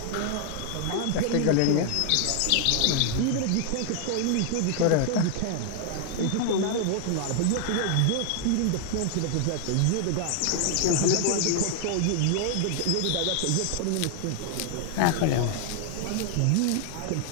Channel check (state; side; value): different; both; correlation 0.00